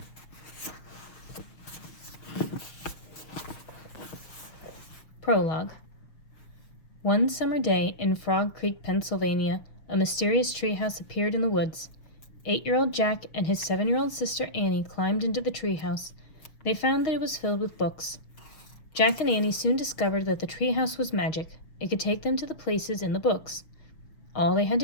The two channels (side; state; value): right; late; 6.4 ms